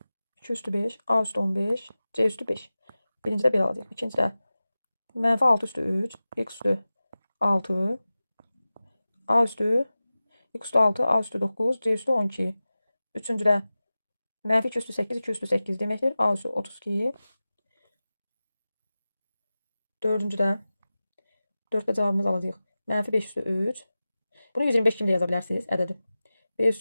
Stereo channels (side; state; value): both; inverted; correlation -0.96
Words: 2 üstü 5. A üstü 15. C üstü 5. Birincidə belə alacaq. İkincidə mənfi 6 üstü 3. X üstü 6. A üstü X üstü 6. A üstü 9. C üstü 12. Üçüncüdə mənfi 2 üstü 8. 2 üstü 8 deməkdir. A üstü 32. Dördüncüdə 4'də cavabımız alacağıq. Mənfi 5 üstü 3. Bunu 125 kimi də yaza bilərsiniz ədədi. B